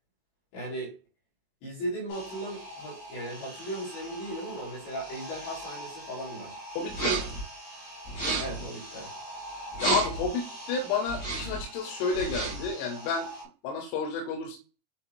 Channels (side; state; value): right; late; 21 ms